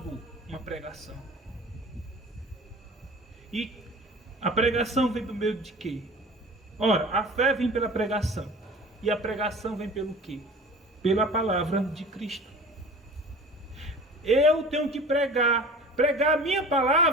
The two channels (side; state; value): both; normal; correlation 0.41